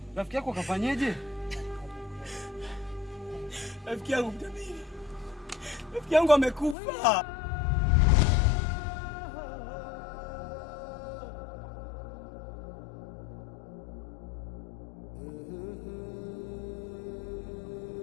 Rafiki yako kafanyeje? Rafiki yangu mtabiri. Rafiki yangu amekufa.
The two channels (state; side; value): drops out; right; at 6.8 s